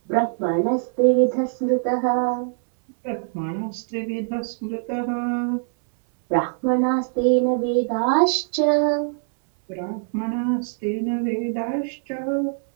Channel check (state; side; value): silent; left; 63 dB below the other